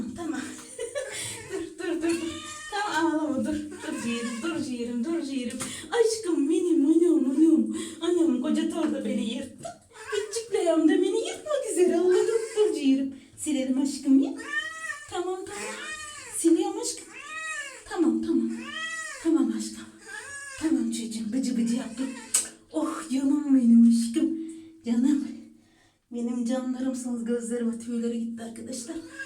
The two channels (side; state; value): both; identical; correlation 1.00